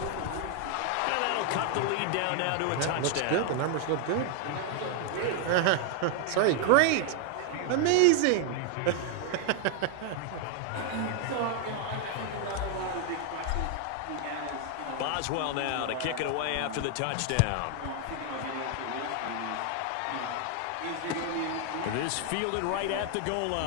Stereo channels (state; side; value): different; both; correlation 0.00